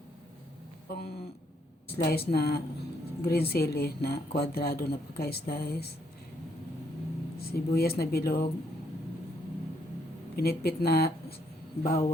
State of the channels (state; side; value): normal; both; correlation 0.72